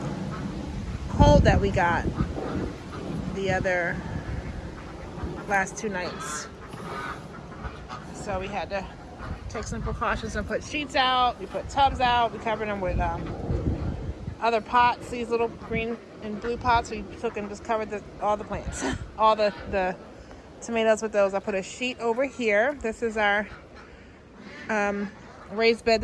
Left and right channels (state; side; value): identical; both; correlation 1.00